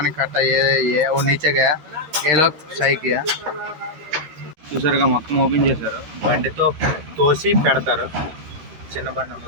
कट्टा ये वो नीचे गया ये लोग सही किया చూసారుగా మొత్తం ఓపెన్ చేశారు. బండితో తోసి పెడతారు. చిన్న బండి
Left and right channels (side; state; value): left; late; 12 ms